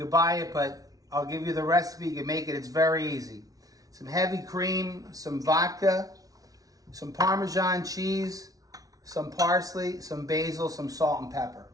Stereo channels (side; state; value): left; late; 0.18 ms